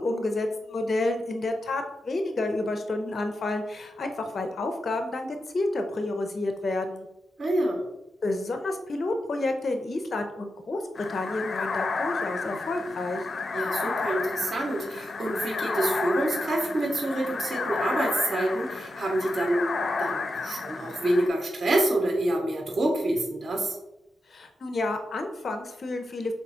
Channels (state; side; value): normal; both; correlation 0.87